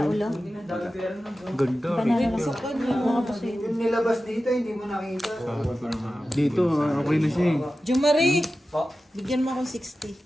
ulo. ganda. Banana lang. Mga pusit. Yung nilabas dito, hindi mo nakita. Dito, okay na siya eh. Jumari! Bigyan mo akong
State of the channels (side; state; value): both; normal; correlation 0.94